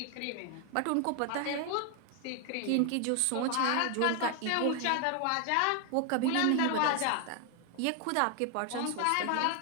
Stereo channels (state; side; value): different; both; correlation 0.00